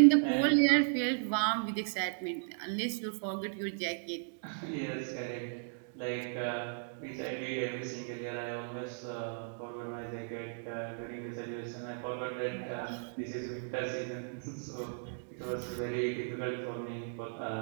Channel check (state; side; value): silent; left; digital silence